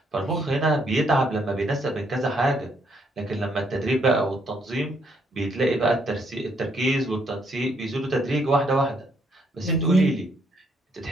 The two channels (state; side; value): normal; both; correlation 0.71